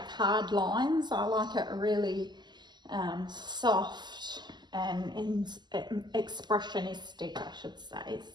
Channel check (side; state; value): left; late; 0.21 ms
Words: hard lines. I like it really soft and expressionistic, I should say.